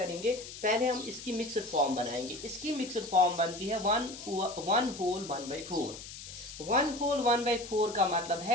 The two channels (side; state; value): left; noise; hiss, 12 dB below the sound